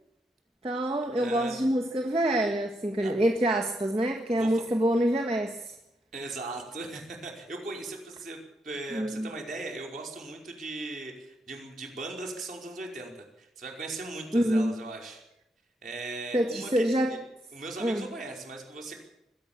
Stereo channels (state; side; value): normal; both; correlation 0.79